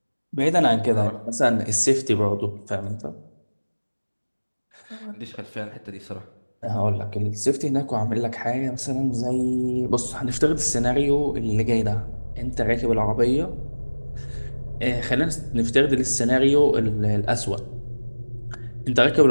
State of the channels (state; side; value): inverted; both; correlation -1.00